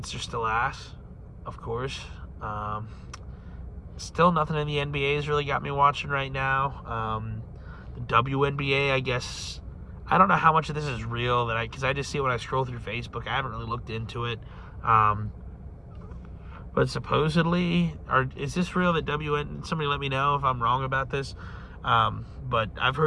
are still ass, of course. Still nothing in the NBA has really got me watching right now. The WNBA, I guess, I don't know how much of this is real, because I just see it when I scroll through Facebook. I haven't really looked into it. But supposedly, is this real that somebody let me know if I'm wrong about this. But I've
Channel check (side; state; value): both; identical; correlation 1.00